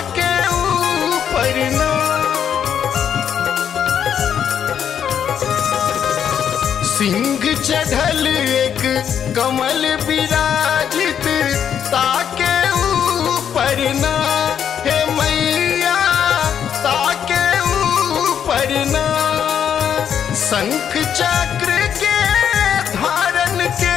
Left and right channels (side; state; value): right; quieter; 8.6 dB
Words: ऊपर ना सिंह चढ़ल एक कमल विराजित ताके ऊपर ना हे मैया ताके ऊपर ना शंख चक्र के धारण के